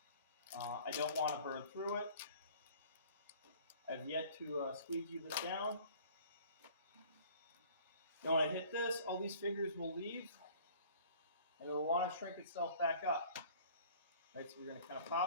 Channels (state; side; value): inverted; both; correlation -0.50